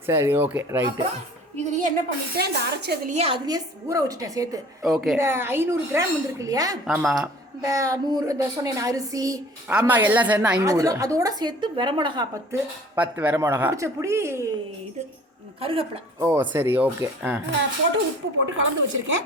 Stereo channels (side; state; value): both; normal; correlation 0.48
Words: சரி, ஓகே, ரைட்டு. இதுலேயே என்ன பண்ணிட்டேன், இந்த அரைச்சதுலேயே அதுலேயே ஊற வச்சுட்டேன் சேர்த்து. ஓகே. இந்த 500 கிராம் வந்துருக்கு இல்லையா? ஆமாம். இந்த 100 இந்த சொன்னேன் அரிசி. ஆமாம், எல்லாம் சேர்ந்து 500. அதோட சேர்த்து வரமிளகா 10 வரமிளகா, பிடிச்சபடி இது கருவேப்பிலை. ஓ சரி, ஓகே. போட்டு உப்பு போட்டு கலந்து வச்சுருக்கேன்.